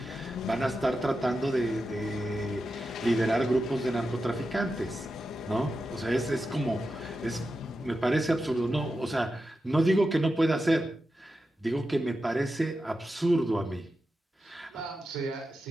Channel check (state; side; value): normal; both; correlation 0.90